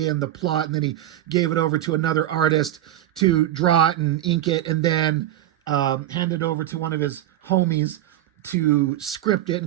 and the plot, and then he gave it over to another artist to draw it and ink it, and then hand it over to one of his homies to script it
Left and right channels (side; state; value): left; quieter; 12.9 dB